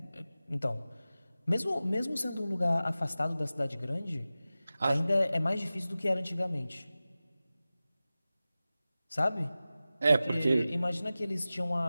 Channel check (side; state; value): both; inverted; correlation -0.96